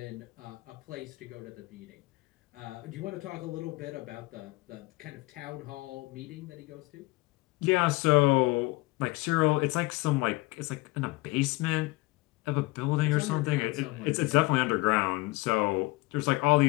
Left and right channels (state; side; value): quieter; right; 22.2 dB